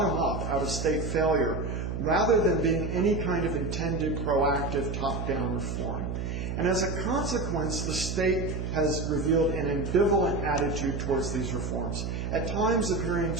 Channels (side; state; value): right; noise; hum, 3 dB below the sound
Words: up out of state failure, rather than being any kind of intended, proactive, top-down reform. And as a consequence, the state has revealed an ambivalent attitude towards these reforms, at times appearing